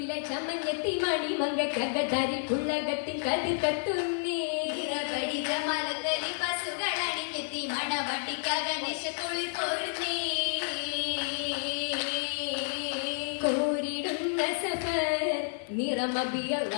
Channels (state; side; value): silent; right; 58 dB below the other